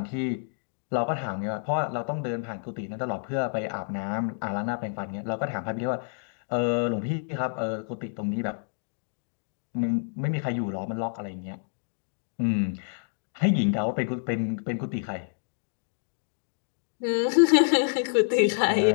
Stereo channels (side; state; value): right; silent; digital silence